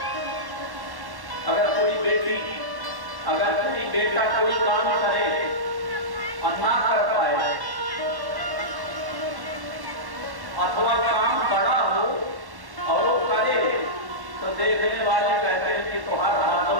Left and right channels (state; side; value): late; left; 1.1 ms